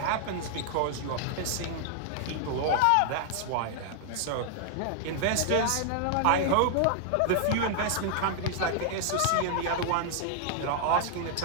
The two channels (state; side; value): different; both; correlation 0.00